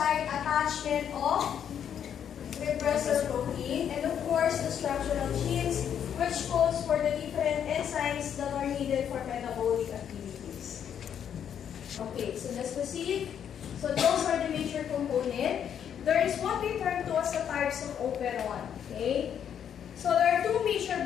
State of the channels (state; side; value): quieter; right; 8.8 dB